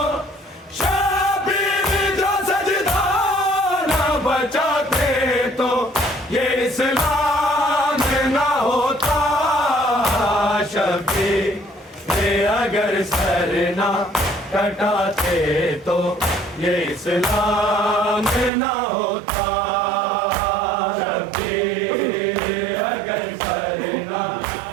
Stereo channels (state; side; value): drops out; left; at 18.5 s